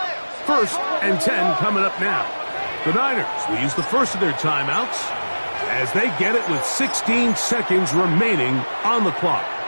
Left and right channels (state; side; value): inverted; both; correlation -1.00